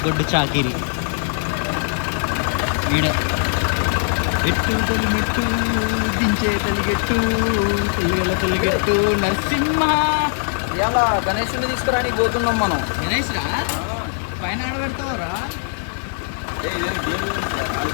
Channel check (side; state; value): right; silent; digital silence